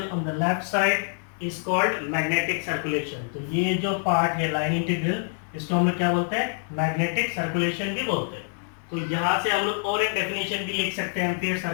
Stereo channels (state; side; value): silent; right; 61 dB below the other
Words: on the left side is called magnetic circulation. तो ये जो पार्ट है line integral इसको हम लोग क्या बोलते हैं? Magnetic circulation भी बोलते हैं. तो यहाँ से हम लोग और एक डेफिनेशन भी लिख सकते हैं एम्पियर